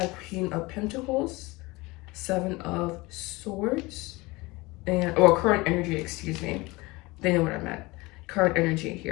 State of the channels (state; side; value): quieter; right; 22.9 dB